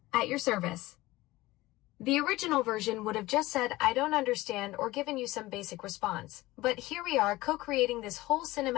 at your service. The original version would have just said, I don't understand, or given you some basic response. But here we are co-creating this whole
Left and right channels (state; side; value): quieter; right; 18.7 dB